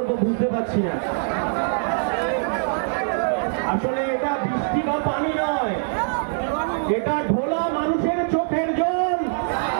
বুঝতে পারছি না। আসলে এটা বৃষ্টি বা পানি নয়, এটা ঢোলা মানুষের চোখের জল।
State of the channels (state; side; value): silent; left; digital silence